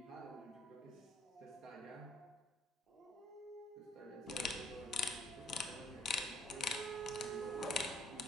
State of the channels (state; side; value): normal; both; correlation 0.63